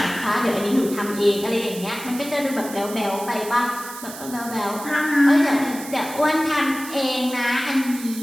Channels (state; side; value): noise; right; hiss, 13 dB below the sound